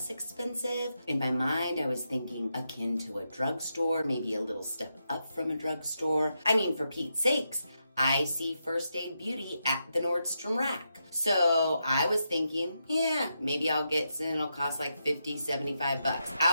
expensive. In my mind, I was thinking akin to a drugstore, maybe a little step up from a drugstore. I mean, for Pete's sakes, I see First Aid Beauty at the Nordstrom rack. So I was thinking, yeah, maybe I'll get some, it'll cost like $50, $75.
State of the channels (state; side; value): inverted; both; correlation -0.85